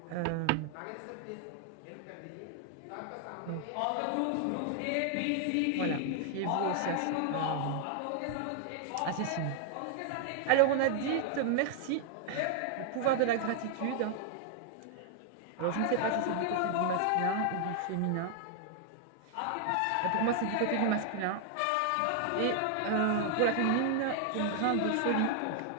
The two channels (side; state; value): both; different; correlation 0.00